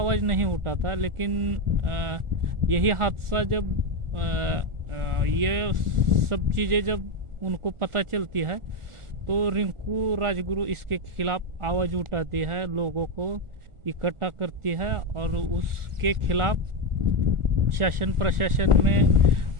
नहीं उठाता। लेकिन यही हादसा जब ये सब चीज़ें जब उनको पता चलती है तो रिंकू राजगुरु इसके खिलाफ आवाज़ उठाती है, लोगों को इकट्ठा करती है और उसके खिलाफ शासन प्रशासन में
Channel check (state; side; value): late; left; 1.4 ms